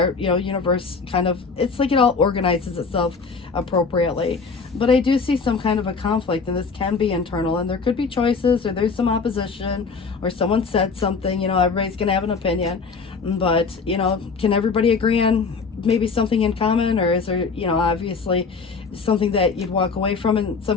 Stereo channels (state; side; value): quieter; right; 4.9 dB